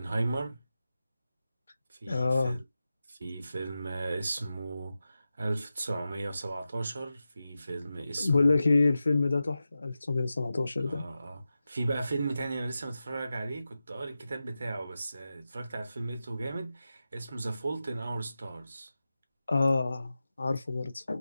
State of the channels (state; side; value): inverted; both; correlation -0.92